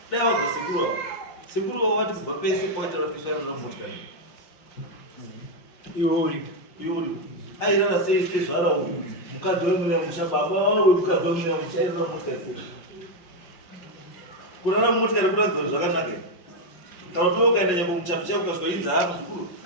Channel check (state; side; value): late; right; 5.5 ms